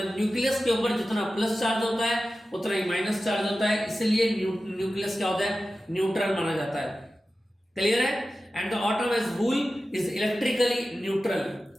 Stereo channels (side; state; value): both; normal; correlation 0.94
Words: न्यूक्लियस के ऊपर जितना प्लस चार्ज होता है उतना ही माइनस चार्ज होता है, इसलिए न्यूक्लियस क्या होता है? न्यूट्रल माना जाता है। क्लियर है? And the atom as whole is electrically neutral.